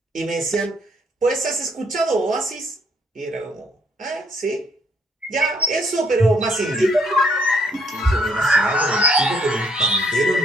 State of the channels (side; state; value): both; normal; correlation 0.67